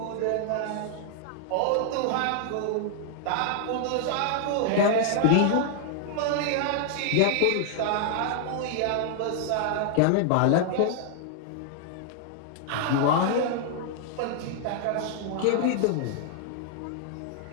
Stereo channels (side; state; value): both; different; correlation 0.00